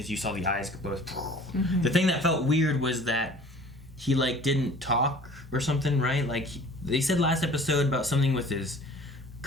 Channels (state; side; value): normal; both; correlation 0.48